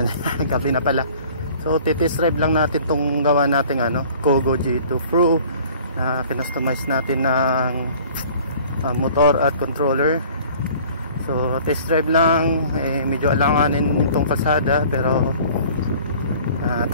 gabi na pala. So titest drive lang natin tong gawa nating Kogo G2 Pro na kinustomize natin ng motor at controller. So test drive lang, medyo alanganin itong kalsada pero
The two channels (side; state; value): both; inverted; correlation -0.49